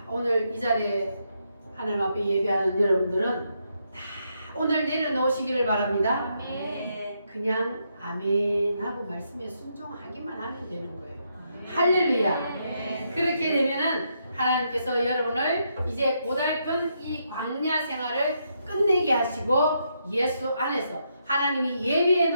오늘 이 자리에 하나님 앞에 예배하는 여러분들은 다 오늘 내려놓으시기를 바랍니다. 그냥 아멘 하고 말씀에 순종하기만 하면 되는 거예요. 할렐루야. 그렇게 되면은 하나님께서 여러분을 이제 고달픈 이 광야 생활을 끝내게 하시고 예수 안에서 하나님이 예비해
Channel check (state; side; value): inverted; both; correlation -0.78